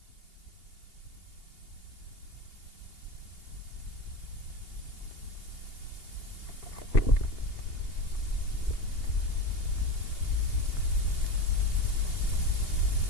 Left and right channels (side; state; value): right; late; 2.8 ms